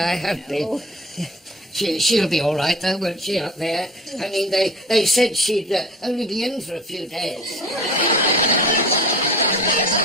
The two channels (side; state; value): both; normal; correlation 0.42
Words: have been. She'll be all right, though, won't she, up there? I mean, they said she'd only be in for a few days.